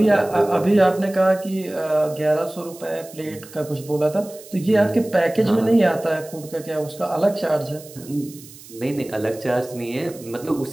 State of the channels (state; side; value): noise; right; hiss, 19 dB below the sound